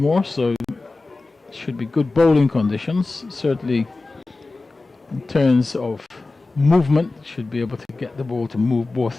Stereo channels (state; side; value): quieter; right; 3.3 dB